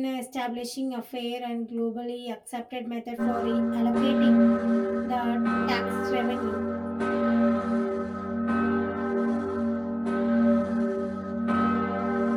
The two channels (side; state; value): both; identical; correlation 1.00